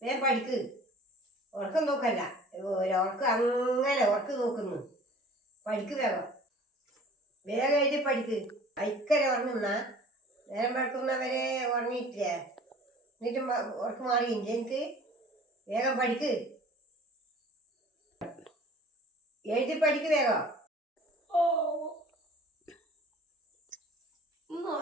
വേഗം പഠിക്ക്. ഉറക്കം നോക്കല്ല, ഉറക്കം അങ്ങനെ ഉറക്കം നോക്കുന്നു. പഠിക്ക് വേഗം. വേഗം എഴുതി പഠിക്ക്. ഭയങ്കര ഉറങ്ങുന്ന നേരം പഠിക്കുന്നവരെ ഉറങ്ങിയിട്ടില്ല. എന്നിട്ടും ഉറക്കം മാറിയില്ല എനിക്ക്. വേഗം പഠിക്ക്. എഴുതി പഠിക്ക് വേഗം.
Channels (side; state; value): both; normal; correlation 0.47